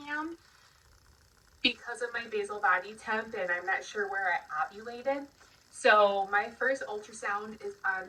am because of my basal body temp, and I'm not sure where I ovulated. So my first ultrasound is on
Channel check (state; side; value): identical; both; correlation 1.00